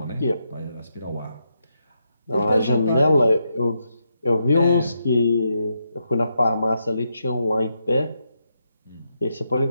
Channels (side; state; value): both; inverted; correlation -0.82